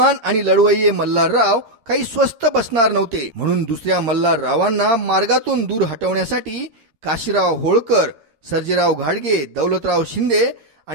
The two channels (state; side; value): late; left; 13 ms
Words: आणि लढवय्ये मल्हारराव काही स्वस्त बसणार नव्हते, म्हणून दुसऱ्या मल्हाररावांना मार्गातून दूर हटवण्यासाठी काशीराव होळकर, सर्जेराव घाडगे, दौलतराव शिंदे